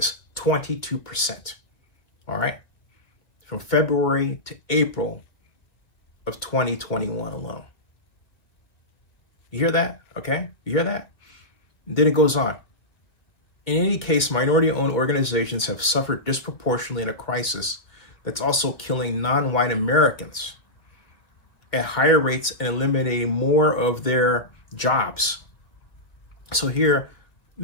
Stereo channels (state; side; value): late; right; 2.1 ms